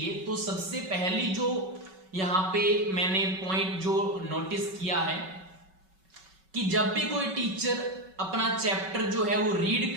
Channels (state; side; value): late; left; 5.3 ms